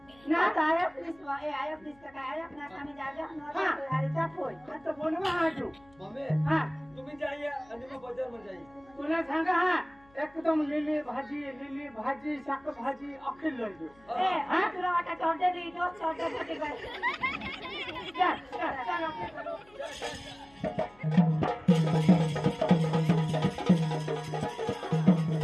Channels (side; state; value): left; noise; hum, 29 dB below the sound